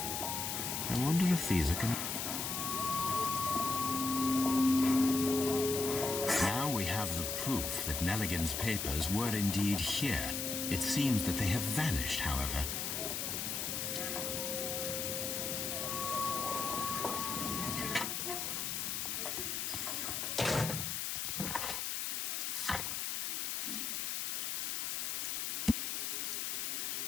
I wonder if these are Now we have the proof that Nelligan's papers were indeed here. It seems that they have vanished, however.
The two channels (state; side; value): noise; left; hiss, 1 dB below the sound